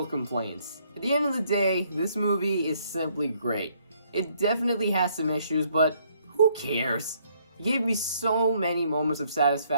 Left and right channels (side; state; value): both; inverted; correlation -0.68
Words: complaints. At the end of the day, this movie is simply great. It definitely has some issues, but who cares? It gave me so many moments of